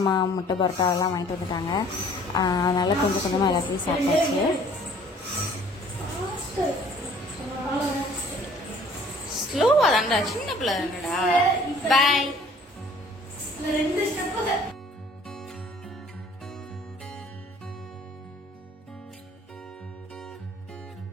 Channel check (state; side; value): normal; both; correlation 0.55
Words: முட்டை பரோட்டா எல்லாம் வாங்கிட்டு வந்துட்டாங்க. அதனால் கொஞ்சம் கொஞ்சமாக எல்லாத்தையும் சாப்பிட்டாச்சு. ஸ்லோவா தான்டா, சின்ன பிள்ளை தானடா. பை.